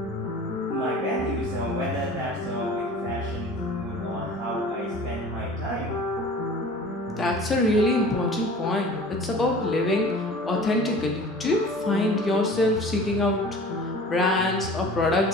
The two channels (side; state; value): both; normal; correlation 0.43